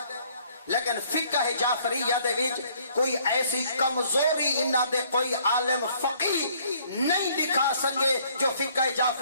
لیکن فقہ جعفریہ دے وچ کوئی ایسی کمزوری انہاں دے کوئی عالم فقیہ نہیں دکھا سکے جو فقہ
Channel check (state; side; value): inverted; both; correlation -0.62